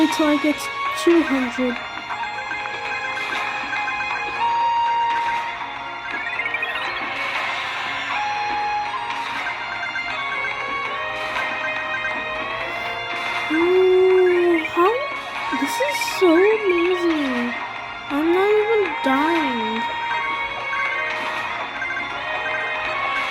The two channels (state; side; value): identical; both; correlation 1.00